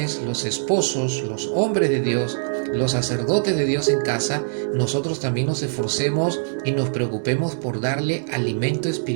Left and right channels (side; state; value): left; silent; 64 dB below the other